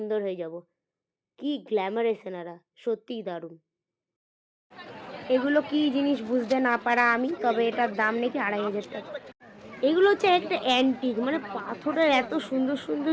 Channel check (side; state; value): both; identical; correlation 1.00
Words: হয়ে যাব। কি গ্ল্যামারাস এনারা, সত্যিই দারুণ। এগুলো কি জিনিস বুঝতে না পারা আমি, তবে এটার দাম নাকি 2500 টাকা। এগুলো হচ্ছে একটা অ্যান্টিক, মানে পাথরের এত সুন্দর সুন্দর